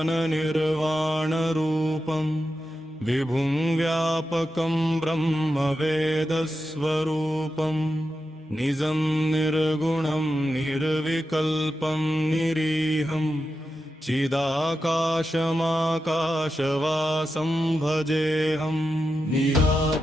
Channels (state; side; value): normal; both; correlation 0.89